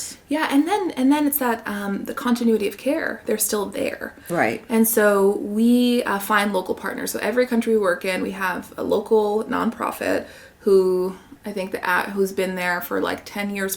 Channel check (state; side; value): identical; both; correlation 1.00